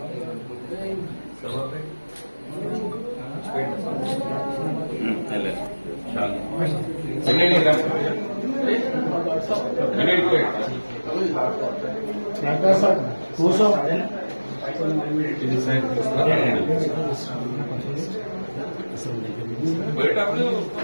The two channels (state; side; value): inverted; both; correlation -1.00